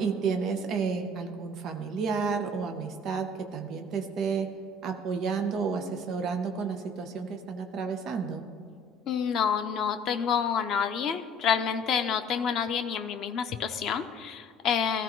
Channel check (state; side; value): normal; both; correlation 0.52